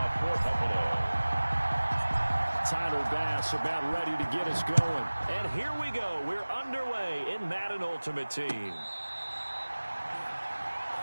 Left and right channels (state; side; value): inverted; both; correlation -1.00